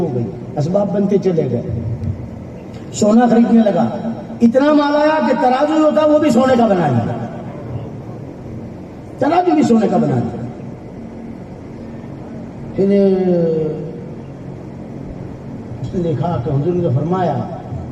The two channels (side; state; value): both; identical; correlation 1.00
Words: گئی، اسباب بنتے چلے گئے، سونا خریدنے لگا، اتنا مال آیا کہ ترازو ہوتا وہ بھی سونے کا بنا لیا، ترازو بھی سونے کا بنا لیا۔ پھر اس نے دیکھا کہ حضور نے فرمایا